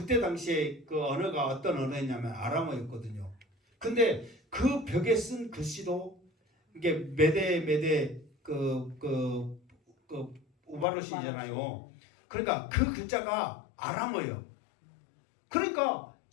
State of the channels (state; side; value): drops out; right; at 10.9 s